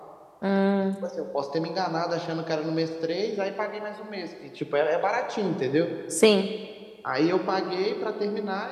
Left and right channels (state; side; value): identical; both; correlation 1.00